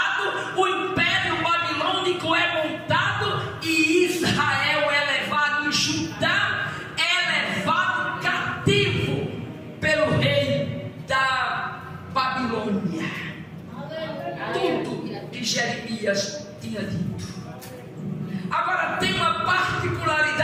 o império babilônico é montado e Israel é levado, e Judá é levado cativo pelo rei da Babilônia. Tudo que Jeremias tinha dito. Agora tem uma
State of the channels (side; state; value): both; identical; correlation 1.00